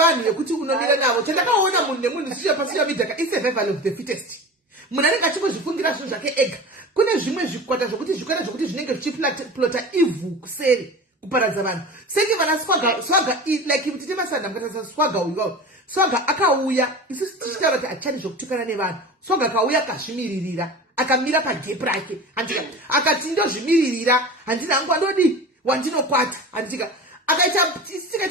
vekuti unomira navo chandakaona munhu nemunhu pasocial media isurvival of the fittest munhu anenge achimbozvifungira zvinhu zvake ega kune zvimwe zvikwata zvokuti zvinenge zvichiplota ivhu kuseri kuparadza vanhu senge vana Swaga like mutite masanda mukataisa Swaga uyu Swaga akauya isusu tichitaura kuti hatichani zvokutukana nevanhu Swaga akauya akazvimiririra akamira pagepu rake handika akati ndozvimiririra handina hangu andodi wandinokwata handika akaita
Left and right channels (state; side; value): normal; both; correlation 0.33